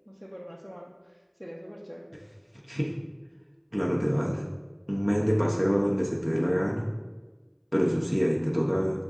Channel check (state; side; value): identical; both; correlation 1.00